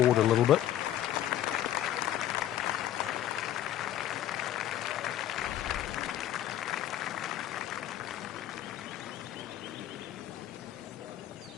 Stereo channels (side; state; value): right; quieter; 12.3 dB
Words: a little bit.